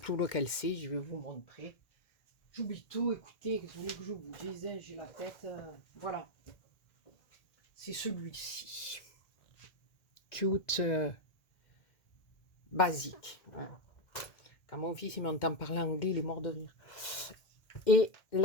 lequel c'est. Je vais vous montrer. J'oublie tout. Écoutez, vous voulez que je vous dise, hein, j'ai la tête. Voilà. C'est celui-ci. Cute. Basique. Voilà. Quand mon fils il m'entend parler anglais, il est mort de rire. Et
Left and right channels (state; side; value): late; right; 1.6 ms